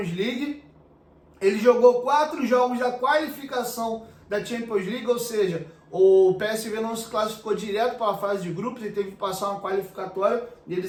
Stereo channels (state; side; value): identical; both; correlation 1.00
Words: League, ele jogou 4 jogos da qualificação da Champions League, ou seja, o PSV não se classificou direto para a fase de grupos, ele teve que passar uma qualificatória e